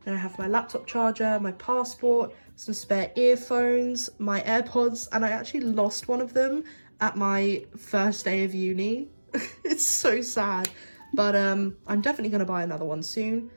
Then I have my laptop charger, my passport, some spare earphones, my AirPods, and I actually lost one of them at my first day of uni. It's so sad, but I'm definitely going to buy another one soon.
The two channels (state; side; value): inverted; both; correlation -1.00